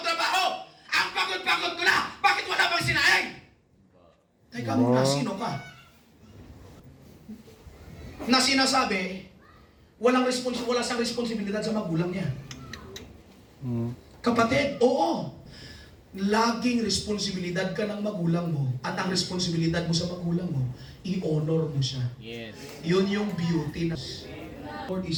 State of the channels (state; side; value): identical; both; correlation 1.00